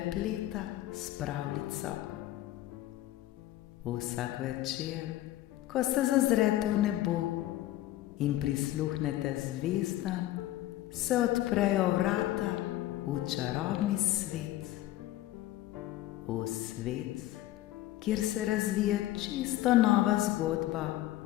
s pravljico. Vsak večer, ko se zazrete v nebo in prisluhnete zvezdam, se odprejo vrata v čarobni svet. V svet, kjer se razvije čisto nova zgodba,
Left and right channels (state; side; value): quieter; right; 14.9 dB